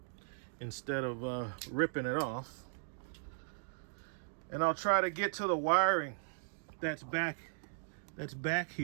instead of ripping it off. And I'll try to get to the wiring that's back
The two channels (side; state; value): left; silent; digital silence